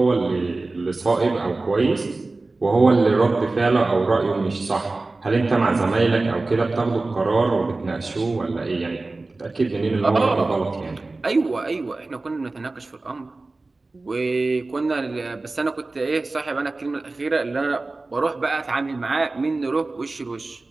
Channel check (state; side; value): quieter; left; 3.3 dB